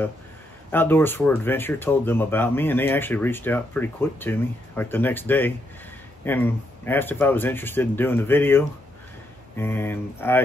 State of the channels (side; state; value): both; normal; correlation 0.78